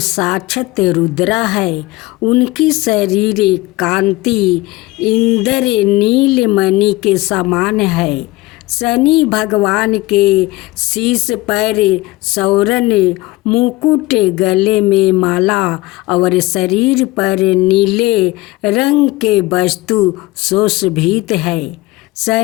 रुद्र है। उनकी शरीर कांति इंद्र नीलमणि के समान है। शनि भगवान के शीश पर सौरन मुकुट, गले में माला और शरीर पर नीले रंग के वस्तु सुशोभित है।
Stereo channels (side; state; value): right; quieter; 20.6 dB